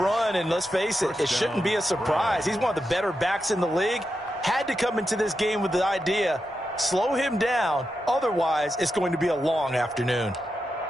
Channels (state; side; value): normal; both; correlation 0.88